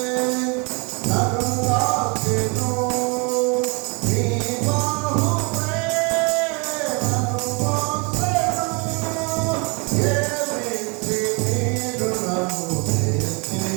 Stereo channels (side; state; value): left; quieter; 31.9 dB